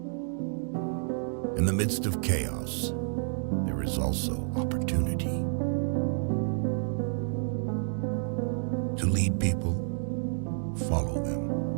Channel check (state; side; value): silent; left; 58 dB below the other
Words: In the midst of chaos, there is also opportunity. To lead people, follow them.